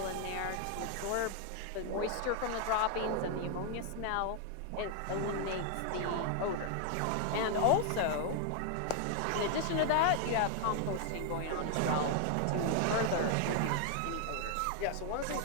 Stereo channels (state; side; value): different; both; correlation 0.00